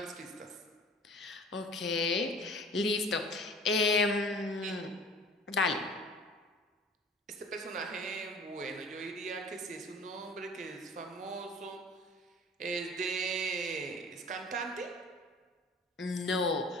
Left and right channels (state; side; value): normal; both; correlation 0.45